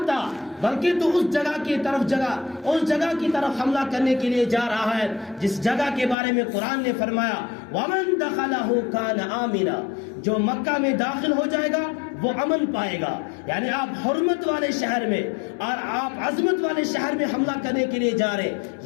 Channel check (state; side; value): drops out; right; at 6.2 s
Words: آ، بلکہ تو اس جگہ کی طرف حملہ کرنے کے لیے جا رہا ہے جس جگہ کے بارے میں قرآن نے فرمایا وَمَن دَخَلَهُ كَانَ آمِنًا، جو مکہ میں داخل ہو جائے گا وہ امن پائے گا. یعنی آپ حرمت والے شہر میں اور آپ عظمت والے شہر میں حملہ کرنے کے لیے جا رہے،